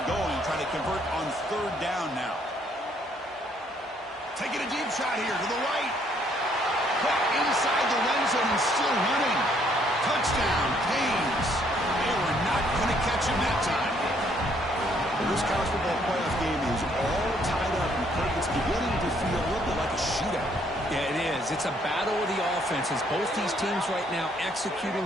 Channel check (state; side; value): normal; both; correlation 0.67